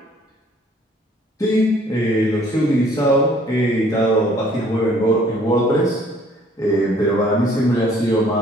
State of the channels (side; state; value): both; normal; correlation 0.59